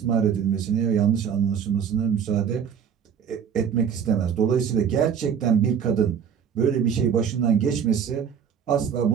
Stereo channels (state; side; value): quieter; left; 7.6 dB